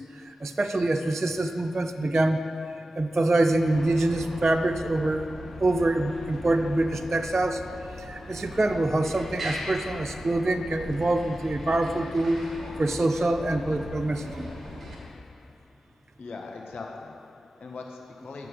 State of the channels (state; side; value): normal; both; correlation 0.94